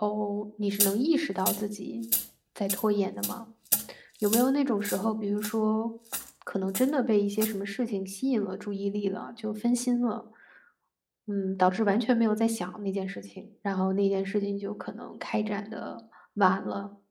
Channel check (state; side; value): identical; both; correlation 1.00